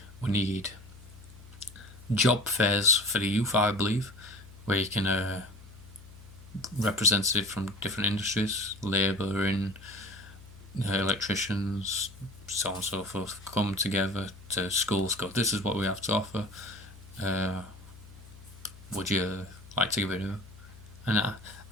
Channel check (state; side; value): noise; left; hum, 19 dB below the sound